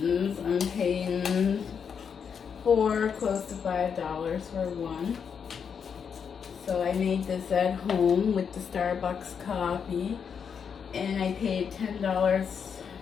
I'm paying close to $5 for one. So I made this at home with the Starbucks coffee, and I paid $10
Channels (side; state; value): right; quieter; 6.9 dB